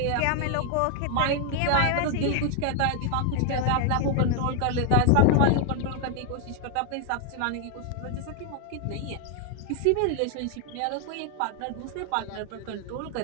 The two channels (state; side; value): different; both; correlation 0.00